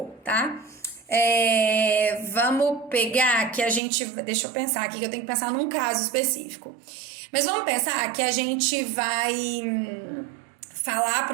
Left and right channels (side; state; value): left; drops out; at 3.8 s